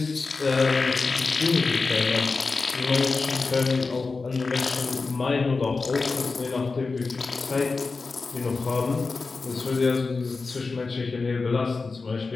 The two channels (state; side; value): quieter; right; 4.1 dB